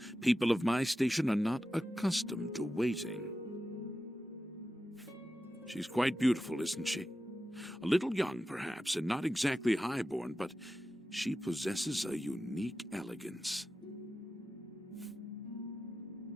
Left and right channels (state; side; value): normal; both; correlation 0.92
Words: People of my station are not accustomed to waiting. She's quite beautiful, isn't she? A little young, perhaps, and not exactly highborn, but she possesses a unique elegance.